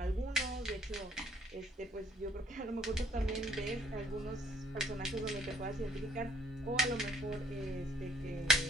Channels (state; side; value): normal; both; correlation 0.62